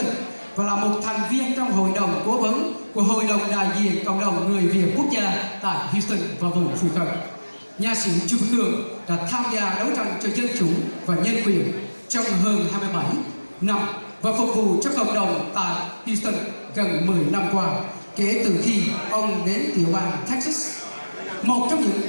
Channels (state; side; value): inverted; both; correlation -1.00